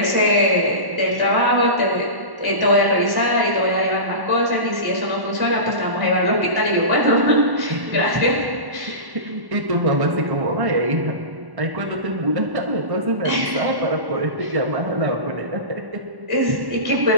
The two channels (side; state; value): left; late; 1.1 ms